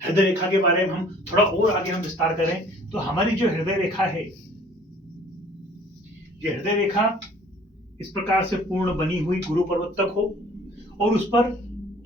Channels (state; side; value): normal; both; correlation 0.52